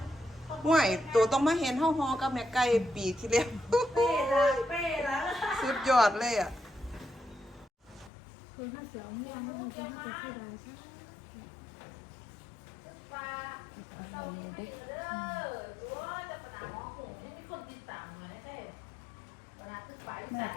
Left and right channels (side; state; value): right; drops out; at 8.1 s